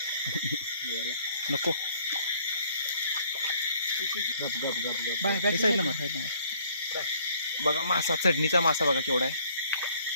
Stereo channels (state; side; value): inverted; both; correlation -0.61